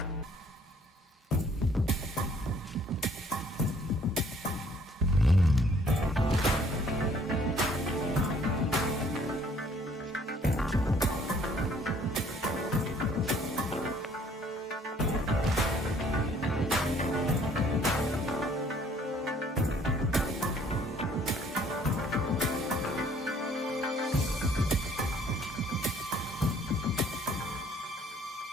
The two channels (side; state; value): both; normal; correlation 0.60